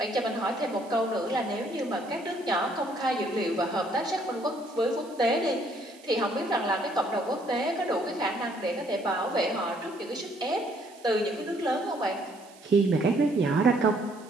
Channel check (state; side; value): noise; right; hiss, 24 dB below the sound